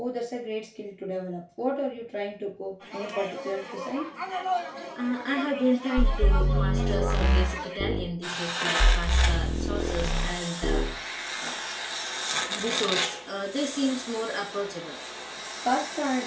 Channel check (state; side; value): identical; both; correlation 1.00